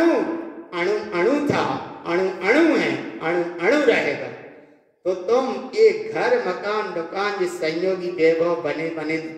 अणु अणु था, अणु अणु है, अणु अणु रहेगा। तो तुम ये घर मकान दुकान जिस संयोगी वैभव बने बने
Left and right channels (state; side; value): identical; both; correlation 1.00